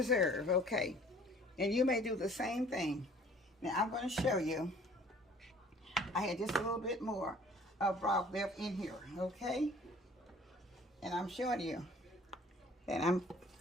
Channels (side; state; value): both; normal; correlation 0.53